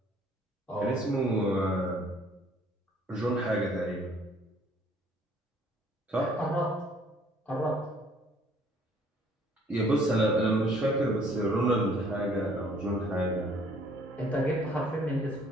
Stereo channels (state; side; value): normal; both; correlation 0.60